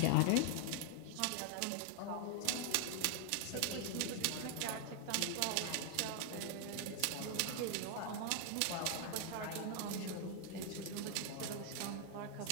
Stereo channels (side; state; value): both; different; correlation 0.00